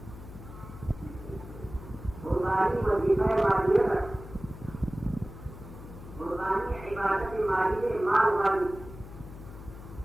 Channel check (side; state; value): left; noise; hum, 14 dB below the sound